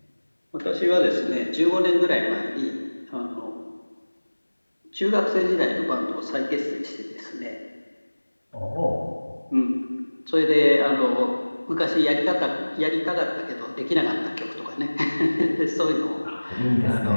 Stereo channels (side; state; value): both; inverted; correlation -1.00